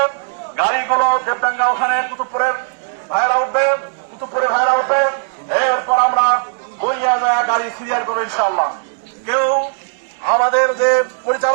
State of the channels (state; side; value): silent; left; 68 dB below the other